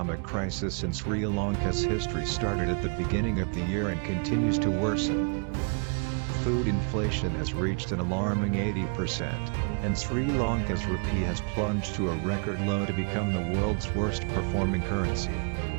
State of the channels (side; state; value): left; quieter; 39.8 dB